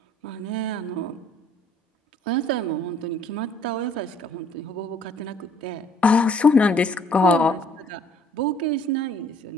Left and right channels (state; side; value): normal; both; correlation 0.59